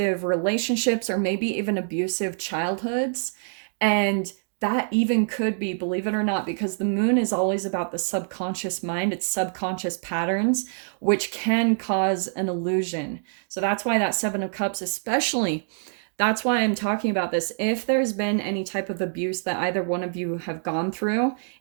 relationships, or maybe even abusive childhoods. And that even could be, believe it or not, because the moon is always about the subconscious mind, it's subconscious patterns, which can cause an illusion. So that's why that Seven of Cups, especially, that's why I'm talking about this. If there's been any type of abuse that either one of you have gone through,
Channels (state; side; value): silent; left; digital silence